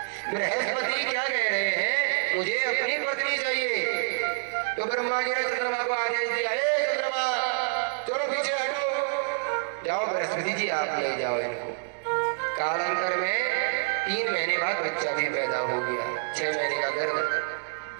बृहस्पति क्या कह रहे हैं, मुझे अपनी पत्नी चाहिए। तो ब्रह्मा जी ने चंद्रमा को आदेश दिया, हे चंद्रमा चलो पीछे हटो, जाओ बृहस्पति जी आप ले जाओ इनको। कालांतर में 3 महीने बाद बच्चा भी पैदा हो गया, 6 महीने का गर्भ।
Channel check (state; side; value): silent; left; digital silence